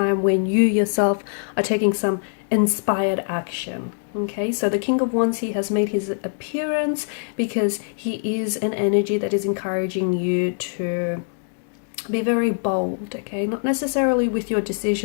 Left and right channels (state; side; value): silent; right; digital silence